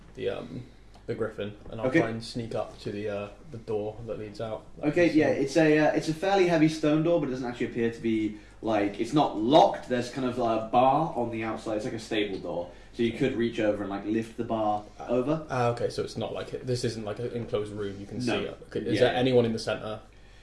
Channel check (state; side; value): identical; both; correlation 1.00